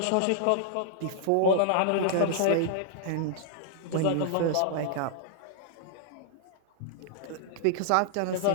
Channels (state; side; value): different; both; correlation -0.01